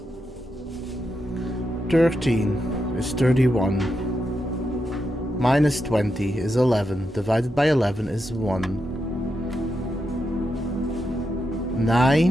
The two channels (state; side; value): normal; both; correlation 0.85